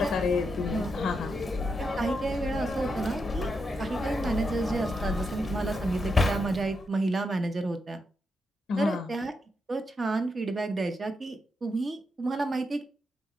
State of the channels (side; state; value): both; normal; correlation 0.84